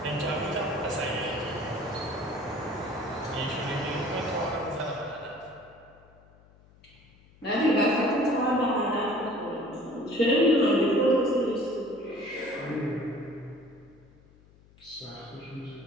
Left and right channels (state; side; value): noise; left; hum, 27 dB below the sound